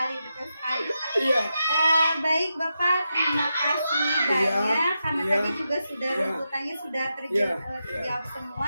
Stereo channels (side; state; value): both; inverted; correlation -0.87